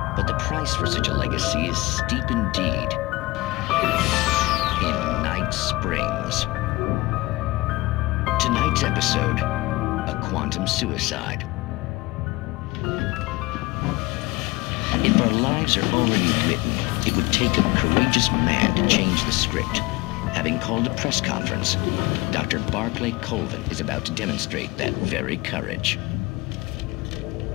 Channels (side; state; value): right; quieter; 21.3 dB